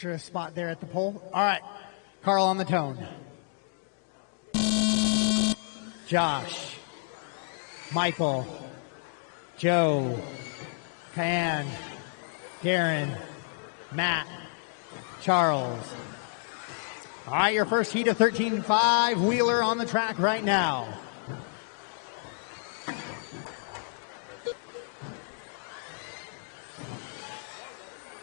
spot there at the pole. All right, Carl on the tone. Josh, Michael, Joe, Cayenne, Darren, Matt, Charles. All right, your first heat of 13.5 Wheeler on the track right now.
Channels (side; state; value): right; silent; 58 dB below the other